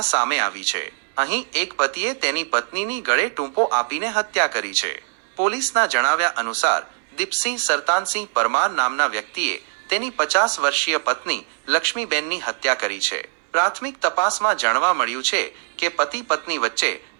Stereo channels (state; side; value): silent; left; 64 dB below the other